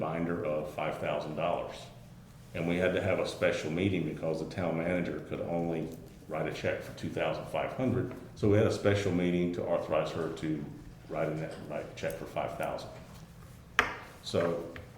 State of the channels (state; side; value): identical; both; correlation 1.00